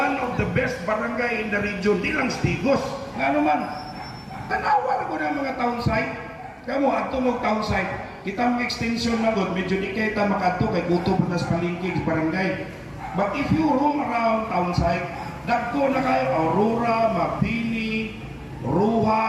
of the best barangay in the region, di lang Stigos. Nga naman, tanawa ko ng mga town site. Kamu, ato mo town site. Kita mga extension na god, medyo di kita makato kay guto pa nas palingkig barangay. But if you roam around town site, dagko na kayo Aurora, Mapini,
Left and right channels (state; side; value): identical; both; correlation 1.00